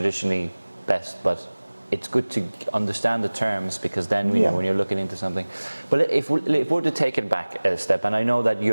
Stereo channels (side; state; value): both; inverted; correlation -1.00